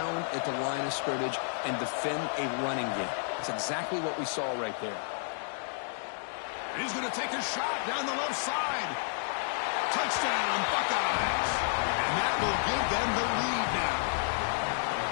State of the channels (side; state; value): right; silent; digital silence